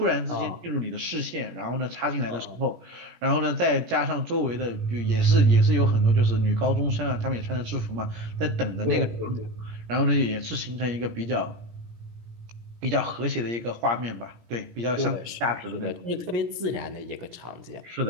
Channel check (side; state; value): left; late; 17 ms